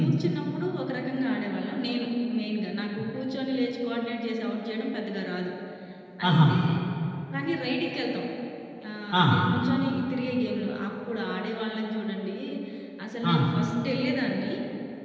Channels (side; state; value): both; identical; correlation 1.00